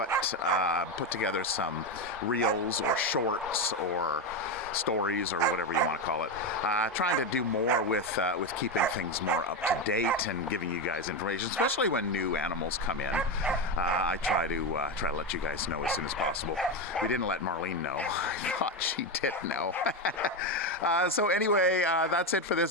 together some reels or shorts or stories or whatever you want to call it, trying to do more with keeping things more up to date and giving you guys information, especially when new animals come in. I try to let you guys know as soon as possible. We didn't let Marlene know. I thought she did know. So anyway, that's it for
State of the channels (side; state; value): both; normal; correlation 0.12